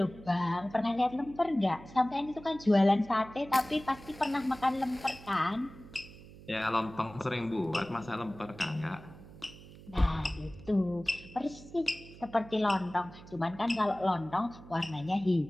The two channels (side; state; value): right; noise; hum, 18 dB below the sound